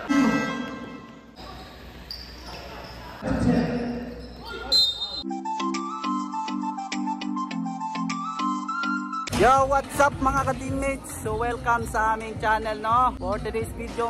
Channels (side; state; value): both; identical; correlation 1.00